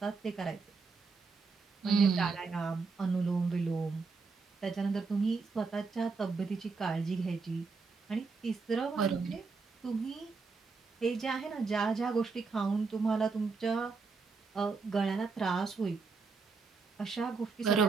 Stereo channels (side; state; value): left; quieter; 4.5 dB